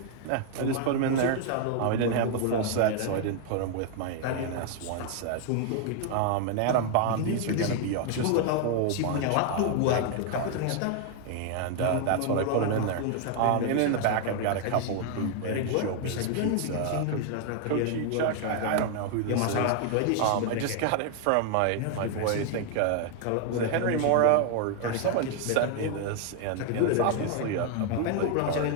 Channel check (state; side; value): different; both; correlation 0.00